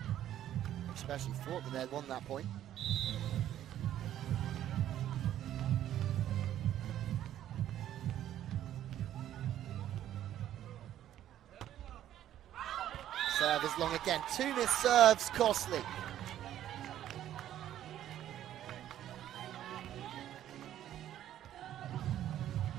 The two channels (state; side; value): quieter; left; 11.8 dB